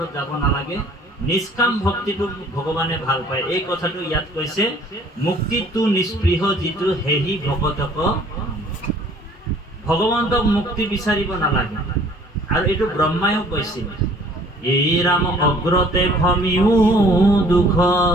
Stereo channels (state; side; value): normal; both; correlation 0.54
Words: যাব নালাগে, নিষ্কাম ভক্তিটো ভগৱানে ভাল পায়। এই কথাটো ইয়াত কৈছে, মুক্তিটো নিস্পৃহ যিটো হেহি ভগতক, ভগৱন্তক মুক্তি বিচাৰিব নালাগে। আৰু এইটো ব্ৰহ্মায়ো কৈছিল, এই ৰাম অগ্ৰতে ভমিও দুখ,